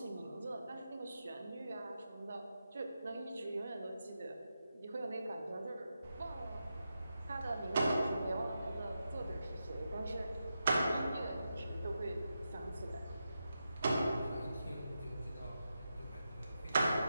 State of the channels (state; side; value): inverted; both; correlation -0.88